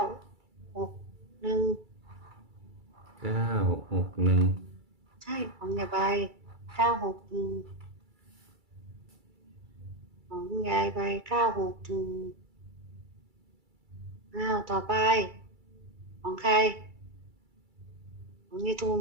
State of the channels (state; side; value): late; left; 2.3 ms